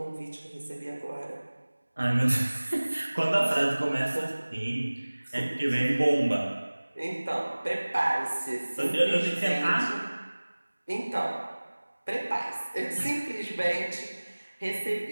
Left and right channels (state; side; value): inverted; both; correlation -1.00